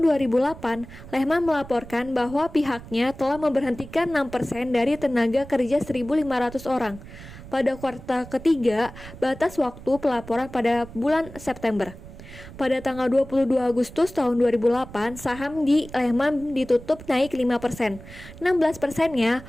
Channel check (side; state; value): right; noise; rumble, 16 dB below the sound